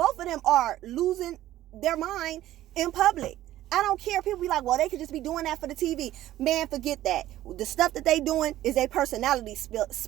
of them are losing their mind in public. I don't care. People be like, well, they could just be doing that for the TV. Man, forget that. The stuff that they doing is their personality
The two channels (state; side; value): quieter; left; 14.1 dB